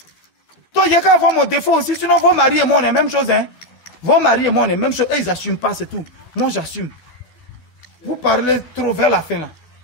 Toi, il y a qu'à avoir mon défaut aussi, sinon vos maris et moi on est la même chose, hein? Vos maris et moi on est la même chose, et ils n'assument pas, c'est tout. Moi j'assume. Vous parlez trop vers la fin là.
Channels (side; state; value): right; late; 12 ms